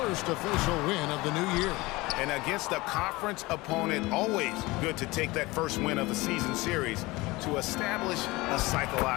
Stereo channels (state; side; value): quieter; right; 21.6 dB